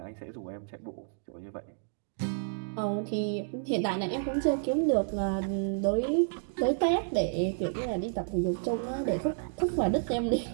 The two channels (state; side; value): silent; left; digital silence